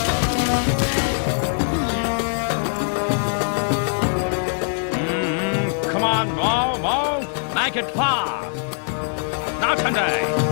Come on, move. Make it fast. Not today.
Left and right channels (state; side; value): silent; right; digital silence